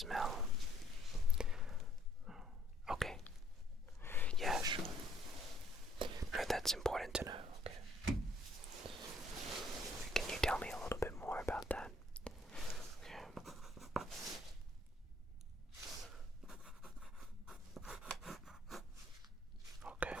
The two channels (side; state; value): both; normal; correlation 0.64